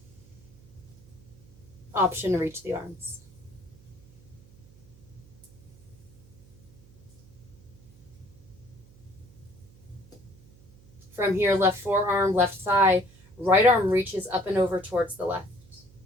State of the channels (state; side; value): noise; right; hum, 24 dB below the sound